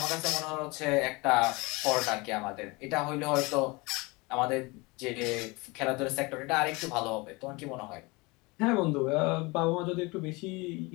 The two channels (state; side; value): quieter; right; 25.2 dB